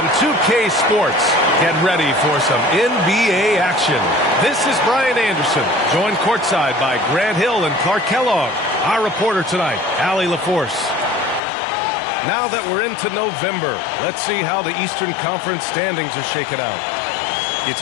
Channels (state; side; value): drops out; right; at 11.4 s